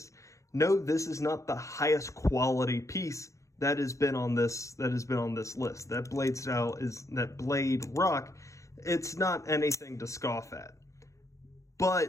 No, this is not the highest quality piece that has been on this list. That blade style is that blade rock. It's not anything to scoff at.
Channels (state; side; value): late; right; 0.15 ms